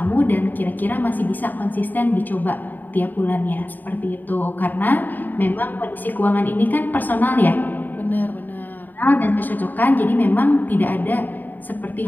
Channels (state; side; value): late; right; 0.088 ms